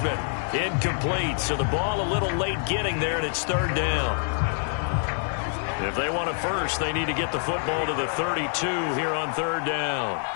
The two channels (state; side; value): silent; right; 61 dB below the other